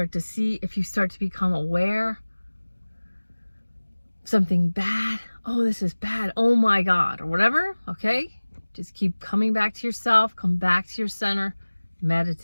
to become aware something bad, oh, this is bad, oh my God, or whatever, okay? Just keep coming back to yourself, come back to your center,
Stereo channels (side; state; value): both; inverted; correlation -1.00